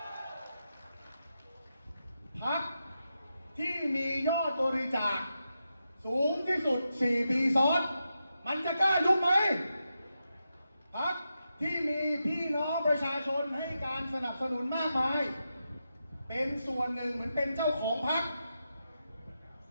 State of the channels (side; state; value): both; inverted; correlation -0.87